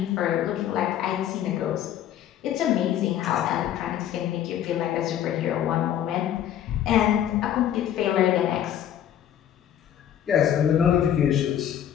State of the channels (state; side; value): quieter; right; 10.5 dB